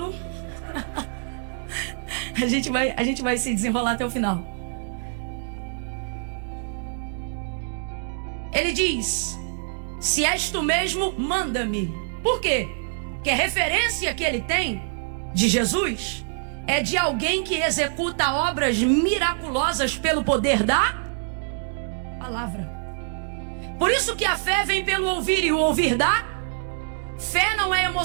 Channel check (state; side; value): silent; left; 62 dB below the other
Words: A gente vai se desenrolar até o final. Ele diz: se és tu mesmo, manda-me. Por quê? Porque a referência que ele tem de Jesus é de alguém que executa obras miraculosas pelo poder da palavra. Por isso que a fé vem pelo ouvir, e o ouvir da fé não é